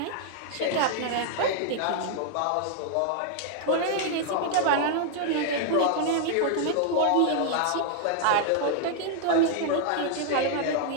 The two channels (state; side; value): different; both; correlation 0.00